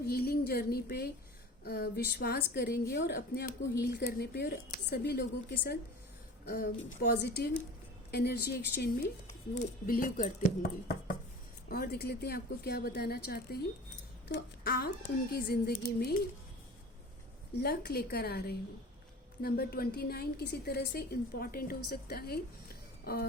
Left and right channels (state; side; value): normal; both; correlation 0.39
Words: हीलिंग जर्नी पे विश्वास करेंगे और अपने आप को हील करने पे और सभी लोगों के साथ पॉजिटिव एनर्जी एक्सचेंज में वो बिलीव करते होंगे। और देख लेते हैं आपको क्या बताना चाहते हैं। तो आप उनकी ज़िंदगी में लक लेकर आ रहे हो। नंबर 29 किसी तरह से इम्पॉर्टेंट हो सकता है